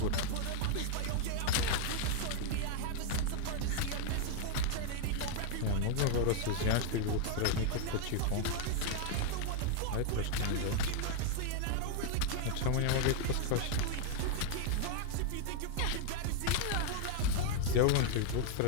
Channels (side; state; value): both; different; correlation 0.00